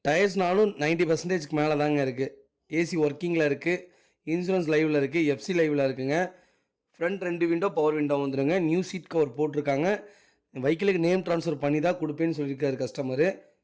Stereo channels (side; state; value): both; identical; correlation 1.00